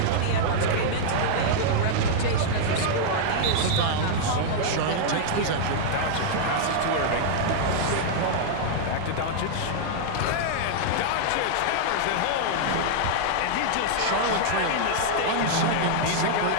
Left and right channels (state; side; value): different; both; correlation -0.01